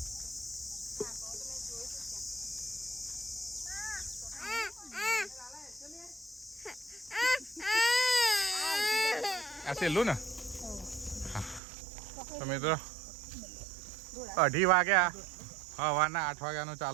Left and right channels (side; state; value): left; drops out; at 11.6 s